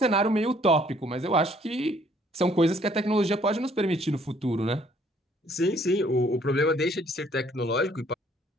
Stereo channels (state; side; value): normal; both; correlation 0.62